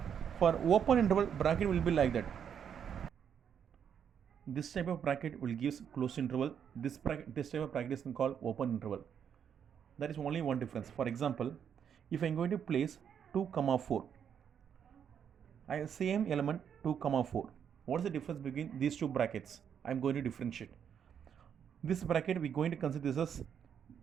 For open interval, bracket will be like that. This type of bracket will give closed interval. This type of bracket is called open interval. That is only one difference. For example, if I am going to place 2, 4, I have same element 2, 4. What is the difference between these two brackets? I am going to differentiate. This bracket we are going to consider this as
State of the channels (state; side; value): quieter; left; 8.1 dB